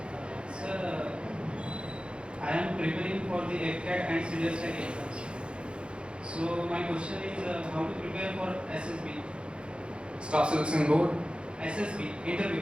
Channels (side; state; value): left; late; 0.055 ms